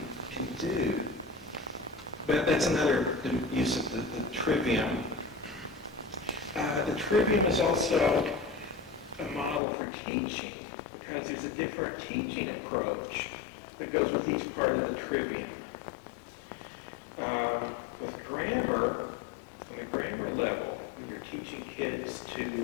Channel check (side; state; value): right; drops out; at 9.6 s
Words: can do. But that's another use of the trivium. The trivium is also a model for teaching, because there's a different teaching approach that goes with each part of the trivium. With grammar, on the grammar level, when you're teaching kids